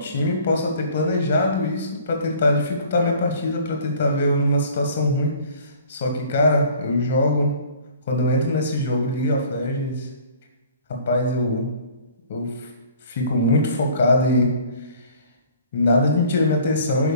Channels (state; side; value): inverted; both; correlation -0.51